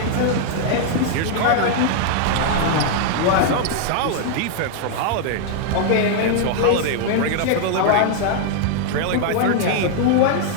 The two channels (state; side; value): different; both; correlation 0.00